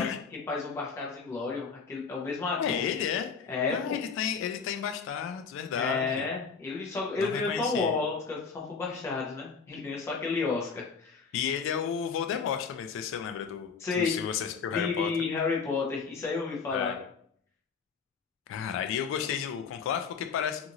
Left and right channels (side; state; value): right; quieter; 5.6 dB